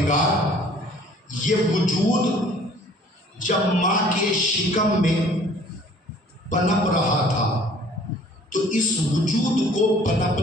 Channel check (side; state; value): both; normal; correlation 0.54